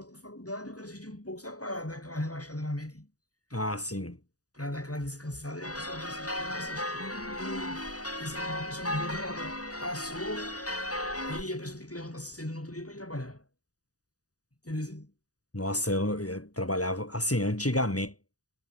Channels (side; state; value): right; late; 0.67 ms